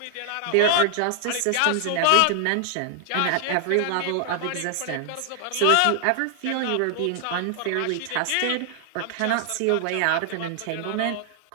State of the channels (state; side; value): different; both; correlation 0.00